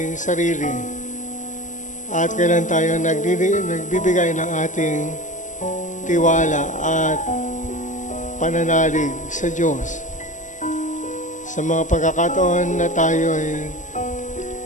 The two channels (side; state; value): right; late; 0.36 ms